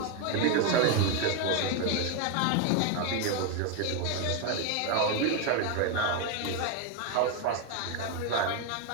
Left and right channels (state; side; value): different; both; correlation 0.01